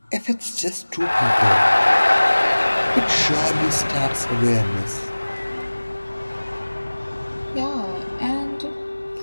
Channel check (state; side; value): inverted; both; correlation -1.00